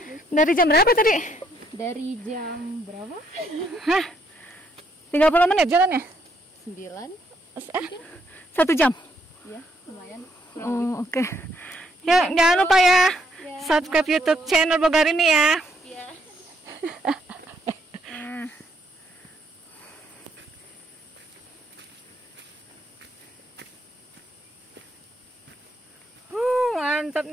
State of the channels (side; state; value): both; normal; correlation 0.72